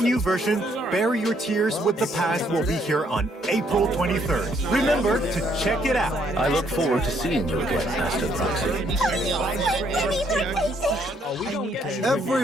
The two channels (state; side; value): normal; both; correlation 0.69